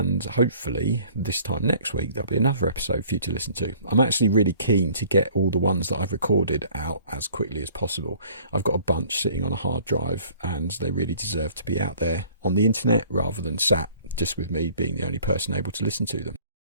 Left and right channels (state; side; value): inverted; both; correlation -0.53